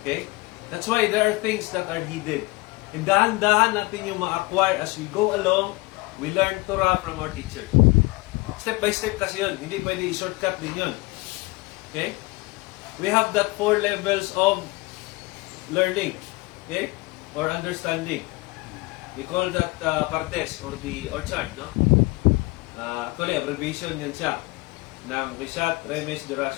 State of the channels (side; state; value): right; quieter; 23.4 dB